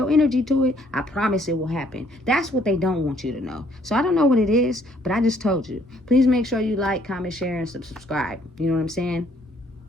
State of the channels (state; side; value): normal; both; correlation 0.64